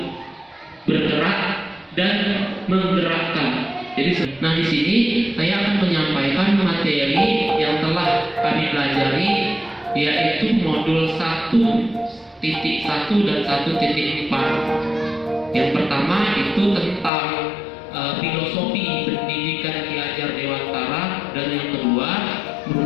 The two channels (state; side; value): drops out; right; at 17.1 s